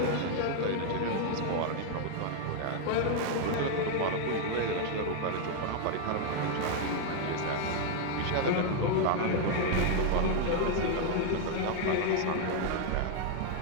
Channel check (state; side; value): different; both; correlation 0.00